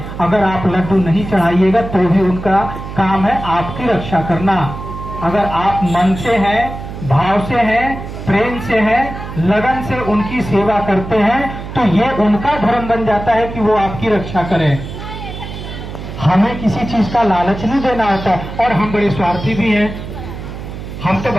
अगर आप लड्डू नहीं चढ़ाइएगा तो भी उनका काम है आपकी रक्षा करना। अगर आप मन से हैं, भाव से हैं, प्रेम से हैं, लगन से उनकी सेवा करते हैं, तो ये उनका धर्म बन जाता है कि वो आपकी रक्षा करें। हमें किसी चीज का लालच नहीं देना होता, और हम बड़े स्वार्थी भी हैं। हम तो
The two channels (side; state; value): right; noise; hum, 9 dB below the sound